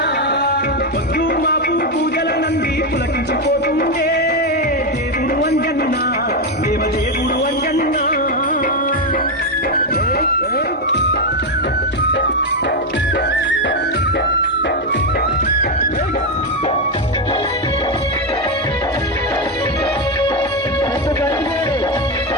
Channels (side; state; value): both; normal; correlation 0.07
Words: పొద్దు మాపు పూజల నంది పులకించిపోతుందే దేవుడు అంజన్న దేవదేవుడు అంజన్న